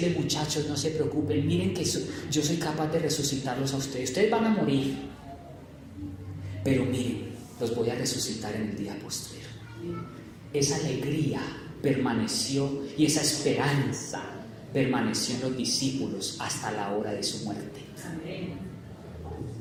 muchachos, no se preocupen, miren que yo soy capaz de resucitarlos a ustedes. Ustedes van a morir, pero miren, los voy a resucitar en el día postrero. Esa alegría permaneció y esa esperanza permaneció en los discípulos hasta la hora de su muerte. Amén.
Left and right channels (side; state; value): both; identical; correlation 1.00